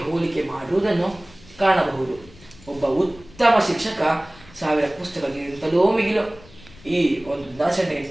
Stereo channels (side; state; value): left; noise; rumble, 23 dB below the sound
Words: ಹೋಲಿಕೆ ಮಾಡುವುದನ್ನು ಕಾಣಬಹುದು. ಒಬ್ಬ ಉತ್ತಮ ಶಿಕ್ಷಕ 1000 ಪುಸ್ತಕಗಳಿಗಿಂತಲೂ ಮಿಗಿಲು. ಈ ಒಂದು ದಿನಾಚರಣೆ